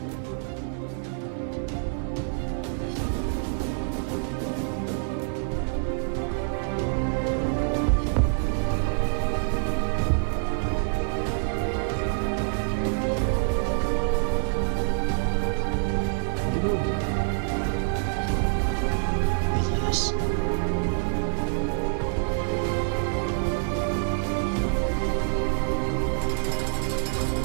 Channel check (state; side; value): silent; left; digital silence